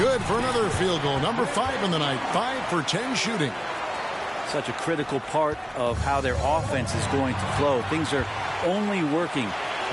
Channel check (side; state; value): both; identical; correlation 1.00